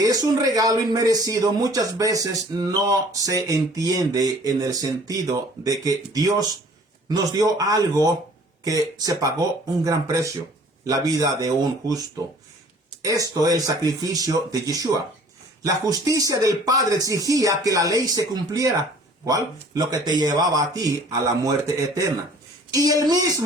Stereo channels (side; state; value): both; normal; correlation 0.52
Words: es un regalo inmerecido, muchas veces no se entiende en el sentido de que Dios nos dio algo que se pagó un gran precio, la vida de un justo. Esto es el sacrificio de Yeshua. La justicia del Padre exigía que la ley se cumpliera. ¿Cuál? Lo que te llevaba a ti a la muerte eterna. Y él